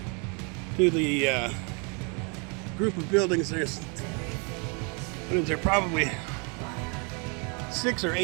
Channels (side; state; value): left; quieter; 34.3 dB